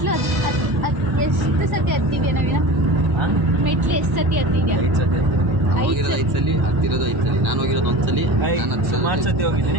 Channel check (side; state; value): left; late; 1.1 ms